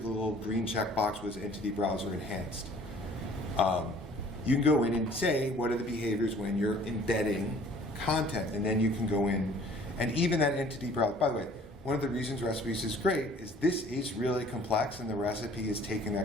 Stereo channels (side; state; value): both; normal; correlation 0.53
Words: little green checkbox was entity browser enhanced. You can go in and say what are the behaviors when you're embedding content, and then you can go in, and even that entity browser, by the way, one of the reasons recipes is great is this is really complex, and the recipe is taking